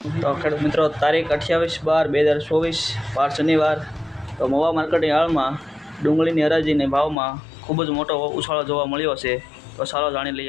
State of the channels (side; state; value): right; drops out; at 7.2 s